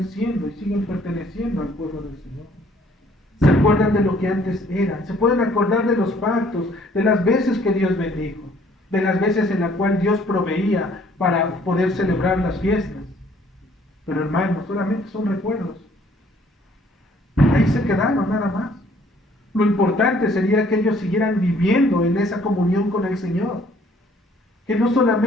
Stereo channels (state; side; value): normal; both; correlation 0.60